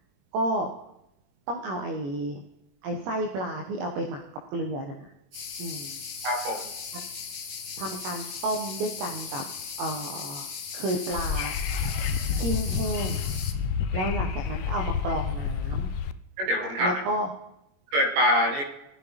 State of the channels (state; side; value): late; left; 21 ms